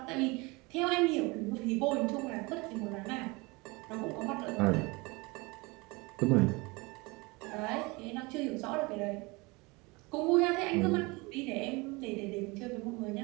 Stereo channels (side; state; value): left; quieter; 25.6 dB